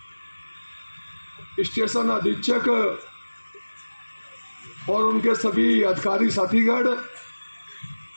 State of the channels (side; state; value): both; inverted; correlation -1.00